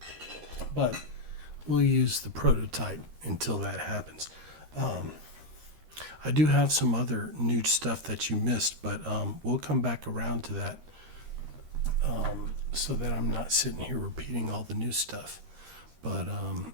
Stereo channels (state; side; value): late; left; 13 ms